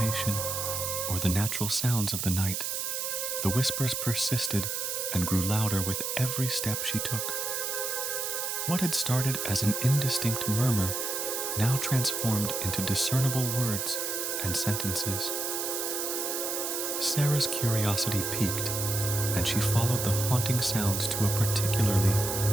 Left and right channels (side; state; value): right; noise; hiss, 2 dB below the sound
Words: or the natural sounds of the night, the whispers persisted and grew louder with every step she took. What had started as an indistinct murmur now transformed into discernible words and sentences. Sarah's curiosity piqued, and she followed the haunting sounds to a particularly